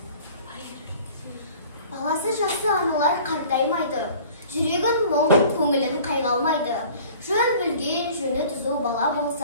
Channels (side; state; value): both; inverted; correlation -0.48